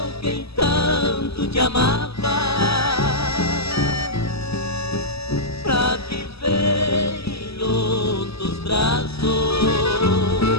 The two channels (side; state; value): right; late; 0.78 ms